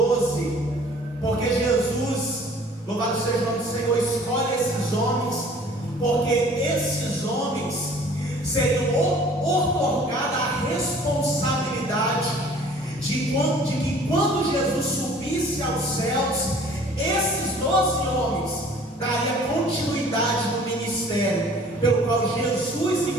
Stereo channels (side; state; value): both; normal; correlation 0.51